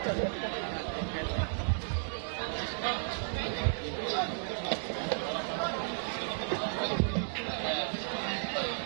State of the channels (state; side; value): silent; left; digital silence